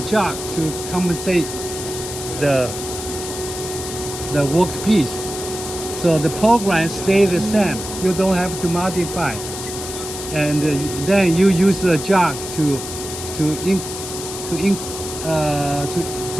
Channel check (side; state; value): left; noise; hiss, 8 dB below the sound